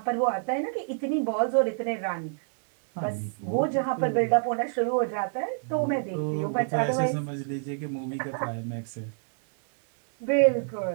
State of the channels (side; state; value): left; silent; digital silence